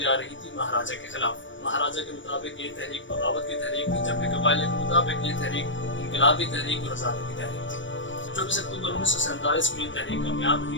جا رہی تھی مہاراجا کے خلاف۔ مہاراجا کے مطابق یہ تحریک بغاوت کی تحریک تھی، جبکہ قبائلیوں کے مطابق یہ تحریک انقلابی تحریک اور آزادی کی تحریک تھی۔ 24 اکتوبر 1947 میں یہ تحریک کامیاب ہوئی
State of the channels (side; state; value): right; late; 0.55 ms